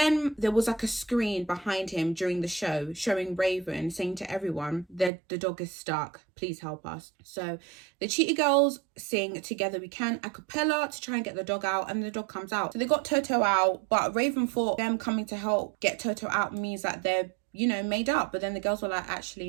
there was like a screen behind him during the show showing Raven saying to everyone that the dog is stuck. Please help us. So the Cheetah Girls sing Together We Can a cappella to try and get the dog out and the dog comes out. So they got Toto out, but Raven thought them coming to help get Toto out means that they're, you know, made up. But then the girls were like, actually,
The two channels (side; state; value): left; drops out; at 5.1 s